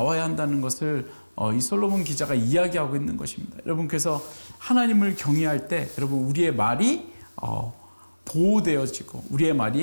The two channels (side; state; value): both; inverted; correlation -1.00